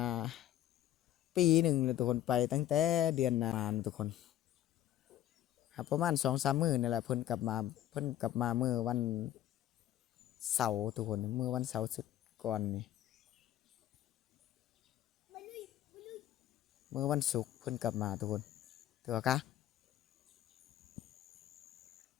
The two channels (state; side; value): quieter; right; 12.5 dB